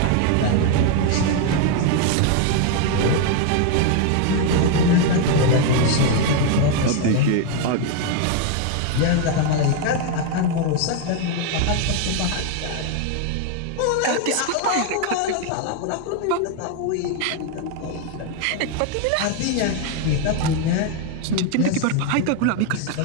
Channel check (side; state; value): both; different; correlation 0.01